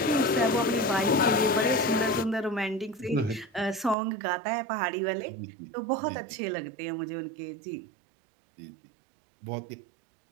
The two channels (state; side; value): drops out; left; at 4.0 s